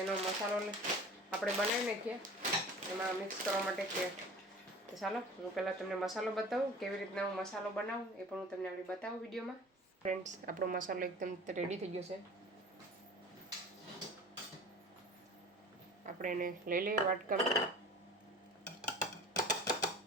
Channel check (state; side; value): normal; both; correlation 0.41